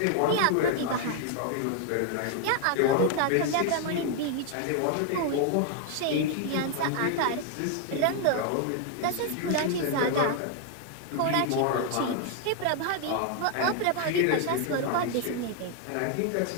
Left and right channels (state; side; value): different; both; correlation 0.00